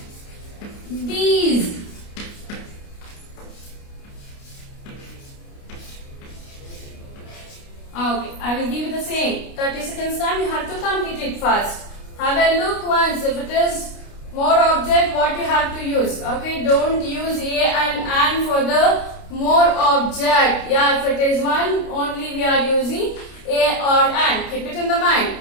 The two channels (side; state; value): right; late; 29 ms